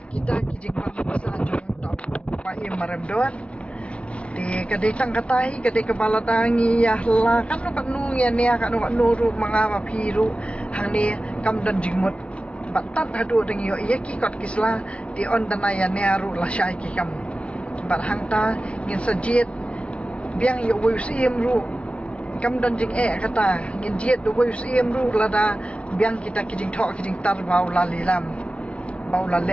kita kijing bangsa jong tau pa I maramdon di kadai tang katai kadai kepala tangi ya la kan no kanu ya ne kan no nuru mangama phiru hang ni kam dan jingmut batat hadu deng yo ya ki kot kisla di on danaya ne aru la syai kikam bar hang ta ngin sajit biang yo wisiem ru kam dan jing kata ngin jiet do wisiem ru lada biang kita kijing thok kijing tar bau lalilam bau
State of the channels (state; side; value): late; right; 0.061 ms